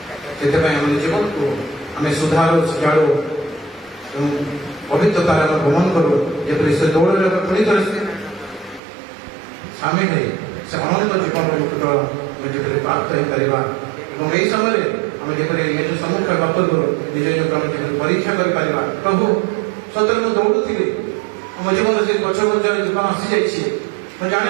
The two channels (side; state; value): left; drops out; at 8.8 s